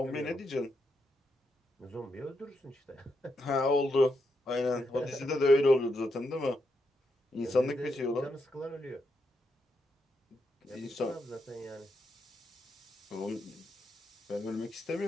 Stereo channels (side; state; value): both; normal; correlation 0.82